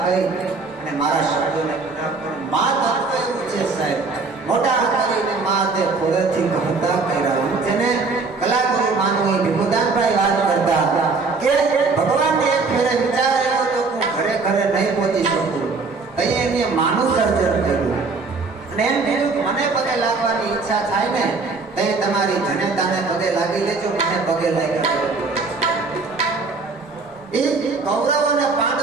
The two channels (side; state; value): left; quieter; 4.0 dB